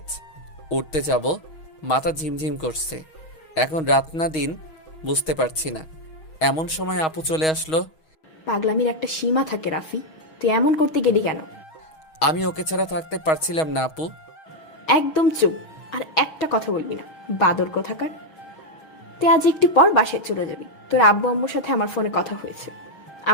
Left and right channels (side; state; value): right; late; 6.3 ms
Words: উঠতে যাব, মাথা ঝিমঝিম করছে। এখন রাত না দিন বুঝতে পারছি না। এমন সময় আপু চলে আসলো। পাগলামির একটা সীমা থাকে রাফি, তুই এমন করতে গেলি কেন? আমি ওকে ছাড়া থাকতে পারছিলাম না আপু। একদম চুপ, আর একটা কথা বলবি না, বাদর কোথাকার। তুই আজ একটু পর বাসায় চলে যাবি। তোর আব্বু আম্মুর সাথে আমার ফোনে কথা হয়েছে,